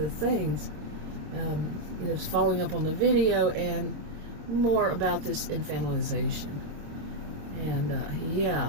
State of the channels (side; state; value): left; late; 26 ms